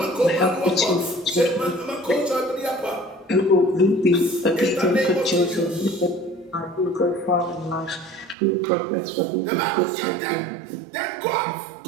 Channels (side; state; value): left; drops out; at 8.3 s